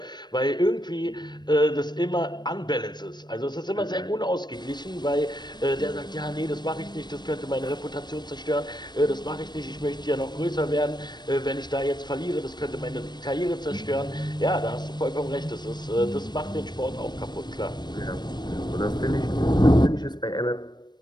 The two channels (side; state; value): right; late; 0.21 ms